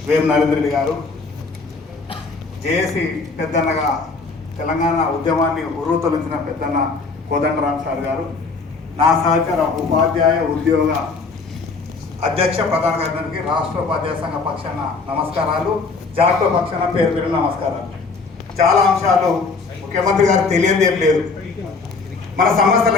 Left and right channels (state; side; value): quieter; right; 4.3 dB